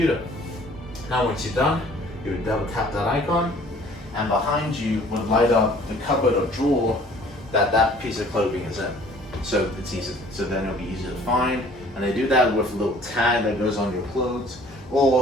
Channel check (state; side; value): normal; both; correlation 0.53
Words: Now once you're done, you would double tap that icon, and behind you would light up the cupboard or drawer that piece of clothing is in. So it's easy. So then it'll be easy to find, and they do that with a little tag that goes on your clothes,